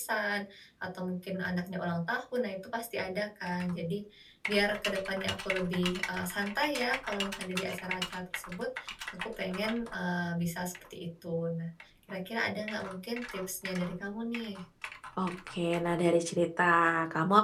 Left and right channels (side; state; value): both; identical; correlation 1.00